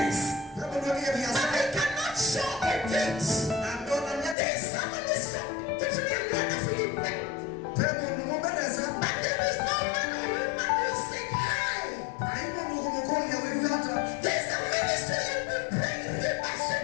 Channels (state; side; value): drops out; right; at 4.4 s